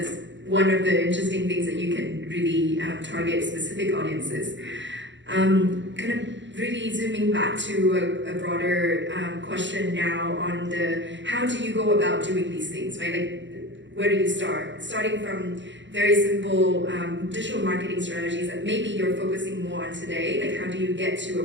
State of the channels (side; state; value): left; late; 0.53 ms